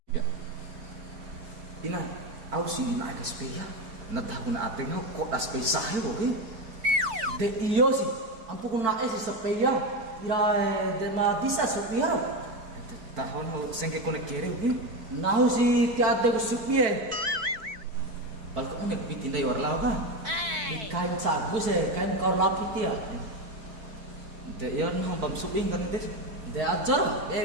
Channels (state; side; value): late; left; 4.5 ms